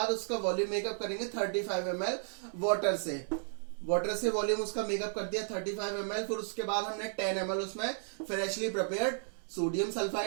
उसका वॉल्यूम मेकअप करेंगे 35 ml वाटर से। वाटर से वॉल्यूम उसका मेकअप कर दिया 35 ml। फिर उसके बाद हमने 10 ml उसमें फ्रेशली प्रिपेयर्ड सोडियम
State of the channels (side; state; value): left; silent; 55 dB below the other